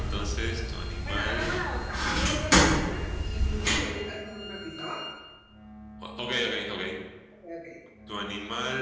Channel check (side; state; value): both; identical; correlation 1.00